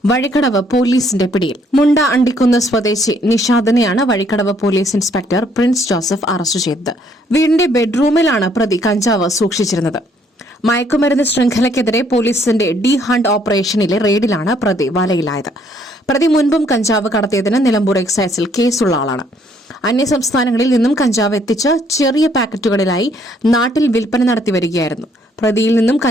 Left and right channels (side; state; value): both; normal; correlation 0.66